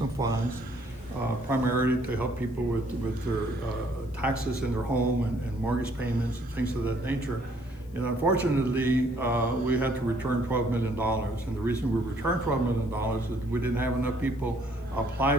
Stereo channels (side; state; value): left; noise; hiss, 30 dB below the sound